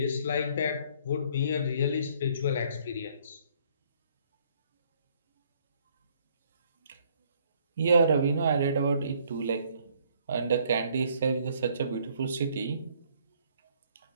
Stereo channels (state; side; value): inverted; both; correlation -0.63